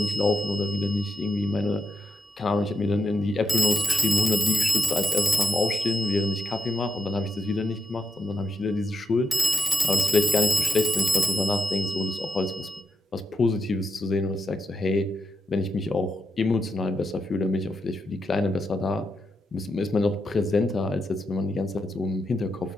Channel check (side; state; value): both; normal; correlation 0.84